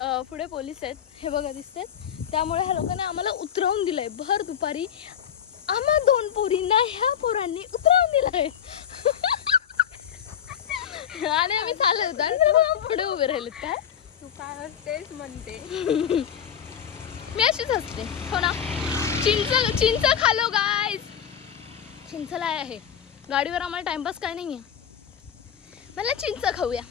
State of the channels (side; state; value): right; quieter; 8.8 dB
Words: पुढे पोलीस आहेत हे बघा दिसतात. त्यामुळे ह्या लोकांनी आम्हाला उतरवून दिलंय भर दुपारी. आम्हा 2 पोरींना ह्या पोरांनी उतरवून दिलंय. आणि आम्ही चालत होतो आणि पुढे उभे राहिलेत. काय तू काय असतेस म्हणते. मी अशीच असते हो ना. चिंच खालो गाईज. चिंचला आहे गाडीवर. आम्हाला टाइमपास काय नाही आहे. मला चिंच खाऊया